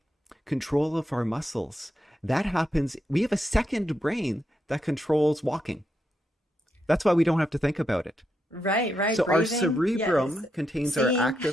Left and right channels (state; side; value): normal; both; correlation 0.83